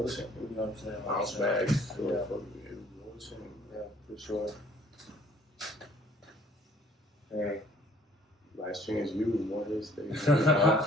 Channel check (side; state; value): both; normal; correlation 0.58